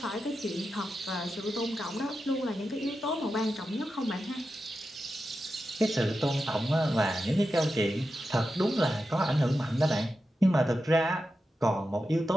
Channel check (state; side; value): normal; both; correlation 0.90